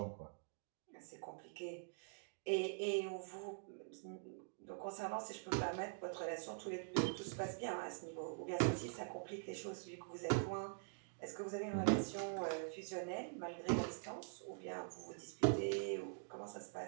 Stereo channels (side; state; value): left; silent; digital silence